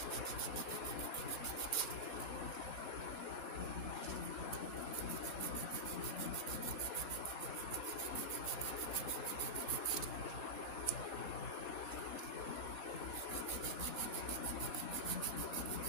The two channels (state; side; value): late; right; 4.1 ms